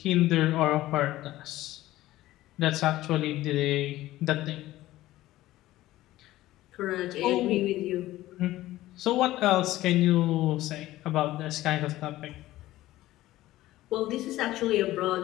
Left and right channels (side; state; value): right; quieter; 15.9 dB